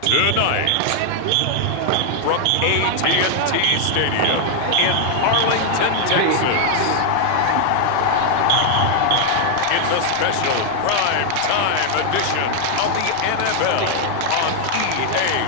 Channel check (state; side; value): different; both; correlation 0.00